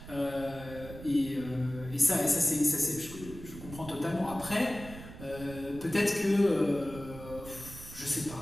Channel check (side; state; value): right; noise; rumble, 14 dB below the sound